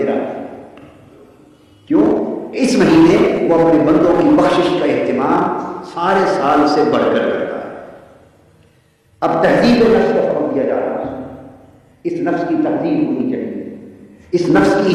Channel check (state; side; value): identical; both; correlation 1.00